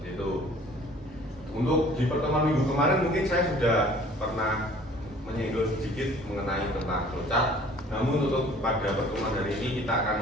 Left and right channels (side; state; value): both; normal; correlation 0.52